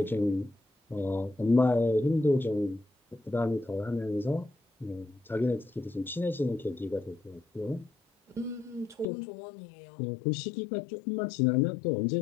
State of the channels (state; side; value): drops out; right; at 9.1 s